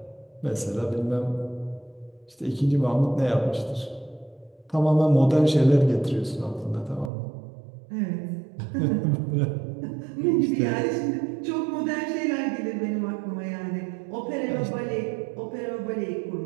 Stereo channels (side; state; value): left; drops out; at 7.1 s